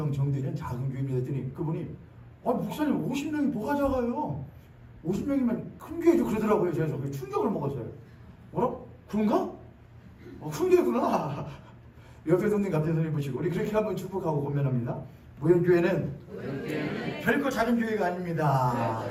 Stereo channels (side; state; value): both; identical; correlation 1.00